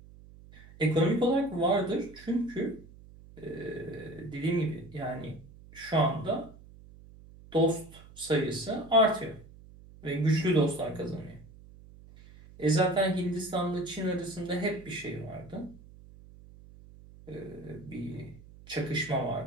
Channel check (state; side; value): noise; right; hum, 20 dB below the sound